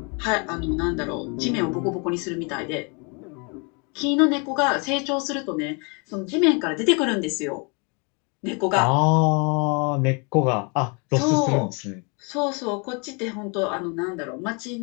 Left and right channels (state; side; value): quieter; right; 33.3 dB